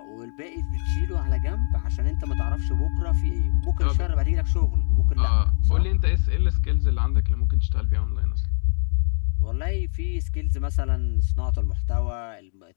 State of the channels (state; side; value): silent; right; digital silence